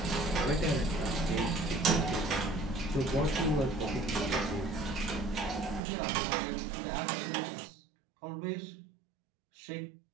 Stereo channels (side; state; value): left; drops out; at 5.8 s